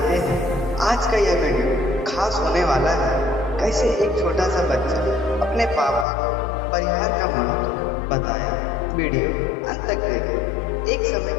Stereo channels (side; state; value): right; drops out; at 6.1 s